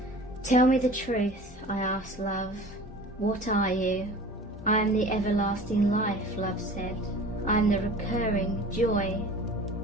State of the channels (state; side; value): normal; both; correlation 0.41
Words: Tell me the truth, I asked love. What are you? I am the everlasting life, love said. I am the recurring joy